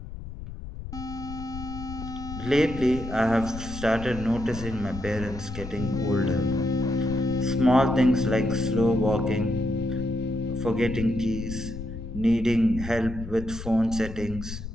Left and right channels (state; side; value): noise; left; rumble, 10 dB below the sound